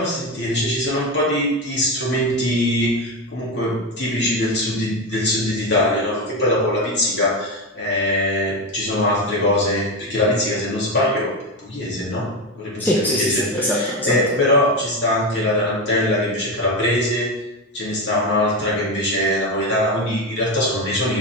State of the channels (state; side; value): normal; both; correlation 0.15